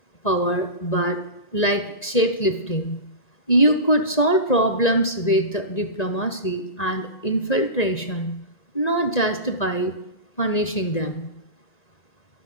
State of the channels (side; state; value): right; late; 1.9 ms